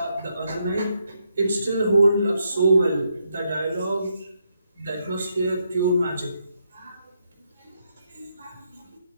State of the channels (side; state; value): both; inverted; correlation -0.79